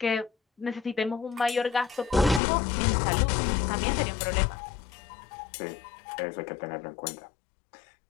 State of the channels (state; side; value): drops out; right; at 2.4 s